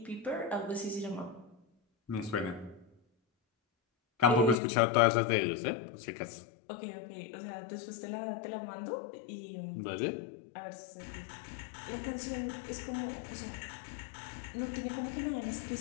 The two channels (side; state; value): right; drops out; at 4.5 s